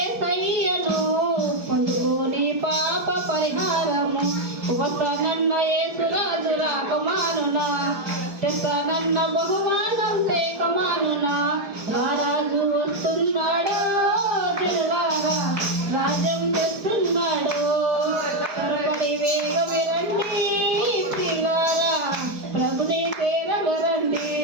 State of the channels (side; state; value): left; late; 4.8 ms